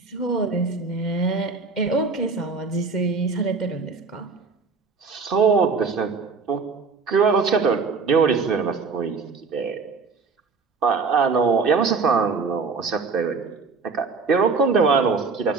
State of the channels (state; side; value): quieter; left; 4.7 dB